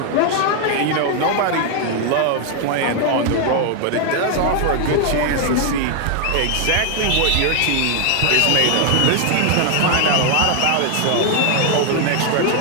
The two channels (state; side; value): different; both; correlation 0.00